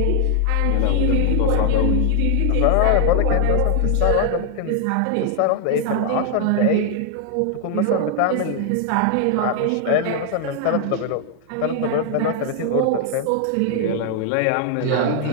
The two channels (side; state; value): both; different; correlation 0.00